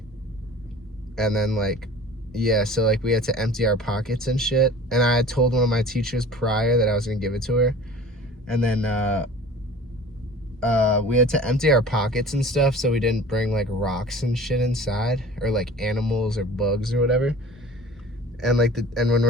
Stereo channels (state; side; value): normal; both; correlation 0.43